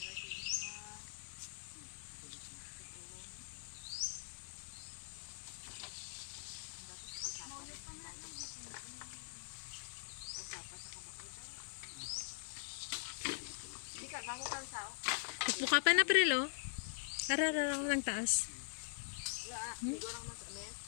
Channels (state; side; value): silent; right; digital silence